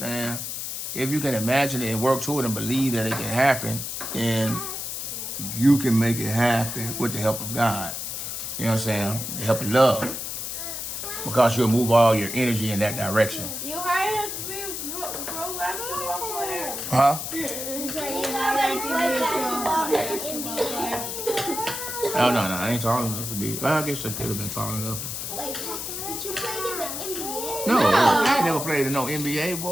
If you can imagine it and work toward it and believe that it can happen, then you can make it happen with the help of God. You know what I'm saying? The help of love. Because you'll move all your energy in that direction. You hired to be a pro basketball player. Huh? You said you hired to be a pro basketball player. Oh, no, I ain't tall enough to be. Well, I guess I could have been tall enough. Wait, did you play in the NBA? No, I ain't never played in no NBA,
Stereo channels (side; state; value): left; noise; hiss, 5 dB below the sound